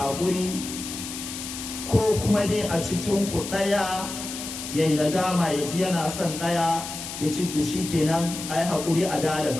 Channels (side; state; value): left; noise; hiss, 8 dB below the sound